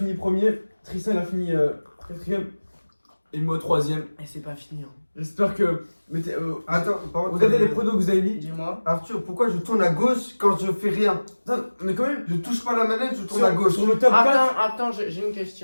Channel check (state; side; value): inverted; both; correlation -1.00